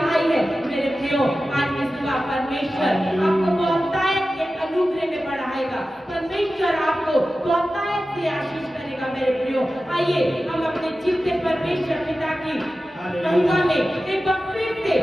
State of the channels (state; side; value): normal; both; correlation 0.94